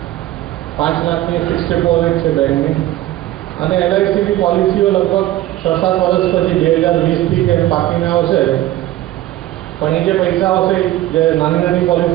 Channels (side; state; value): left; quieter; 14.8 dB